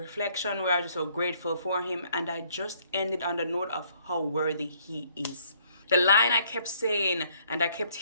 where I was just so grateful for him. And I just ended on the note of how worthy he is. The line I kept saying and I kept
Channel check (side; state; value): both; inverted; correlation -0.65